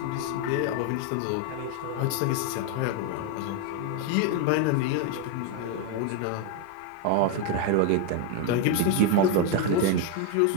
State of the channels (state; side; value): different; both; correlation 0.01